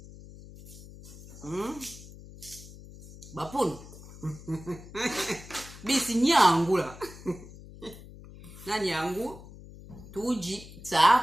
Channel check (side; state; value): left; noise; hum, 17 dB below the sound